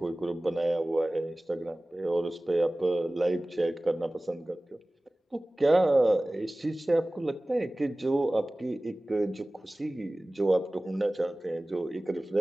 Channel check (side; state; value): both; normal; correlation 0.98